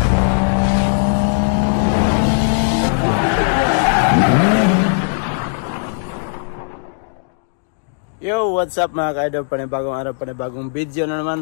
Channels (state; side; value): silent; right; digital silence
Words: Yo, what's up mga ka-idol? Panibagong araw, panibagong video na